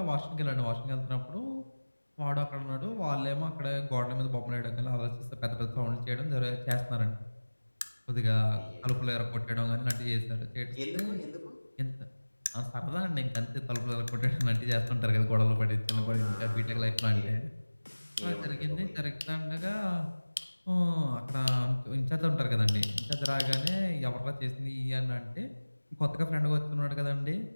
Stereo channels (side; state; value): both; inverted; correlation -1.00